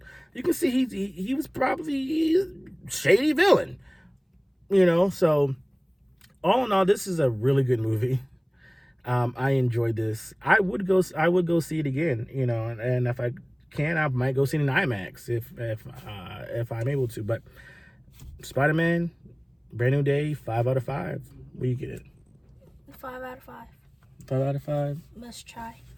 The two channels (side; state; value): both; identical; correlation 1.00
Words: You can see he was probably a shady villain. So all in all, this is a really good movie. I enjoyed this. I would go see it again, and if I can, I might go see it in IMAX if I'm able to. But Spider-Man, Brand New Day, 5 out of 5. What do you get it? 5 out of 5. 5 out of 5. Must try.